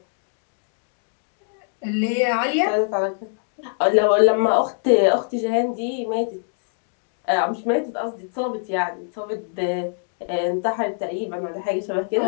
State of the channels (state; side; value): silent; right; digital silence